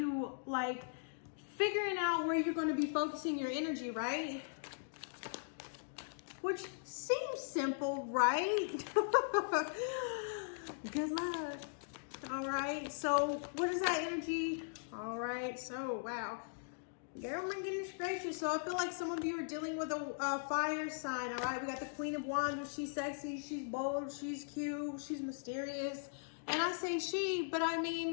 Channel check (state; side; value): silent; right; digital silence